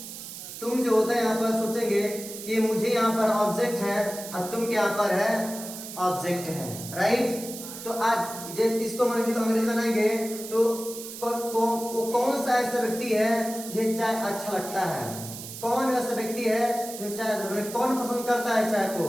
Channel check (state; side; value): noise; right; hiss, 11 dB below the sound